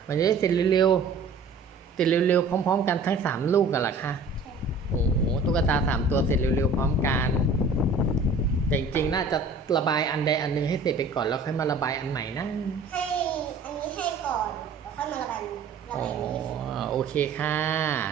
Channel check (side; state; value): left; quieter; 3.7 dB